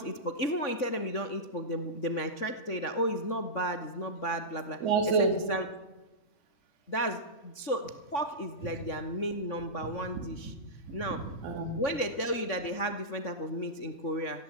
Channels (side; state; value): right; late; 3.5 ms